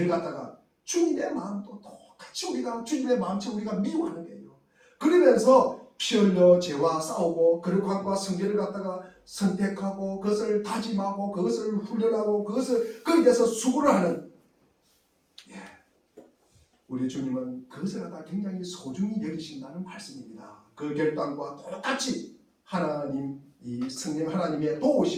갖다가 주님의 마음도 똑같이 우리가 주님의 마음처럼 우리가 미워하는 거예요. 그러면서 피 흘려 죄와 싸우고 거룩함과 성결을 갖다가 선택하고 그것을 다짐하고 그것을 훈련하고 거기에 대해서 수고를 하는 우리 주님은 그것을 갖다 굉장히 소중히 여기신다는 말씀입니다. 그 결단과 똑같이 하나님 이 성령 하나님의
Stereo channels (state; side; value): identical; both; correlation 1.00